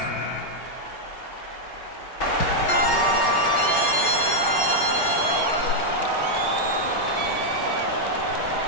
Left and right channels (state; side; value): late; right; 5.3 ms